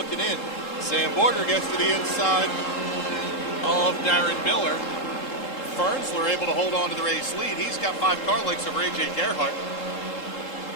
in. Sam Borger gets to the inside of Darren Miller. Fernsler able to hold on to the race lead. He's got 5 car lengths over A.J. Gerhardt.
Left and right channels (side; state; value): right; late; 3.7 ms